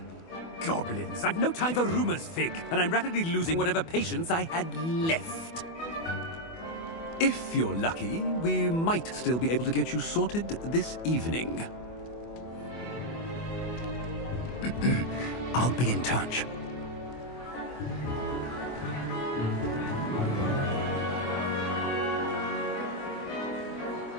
Goblins. I've no time for rumors, Fig, and I'm rapidly losing whatever patience I had left. If you're lucky, we might still be able to get you sorted this evening. I'll be in touch.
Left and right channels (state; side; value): late; right; 24 ms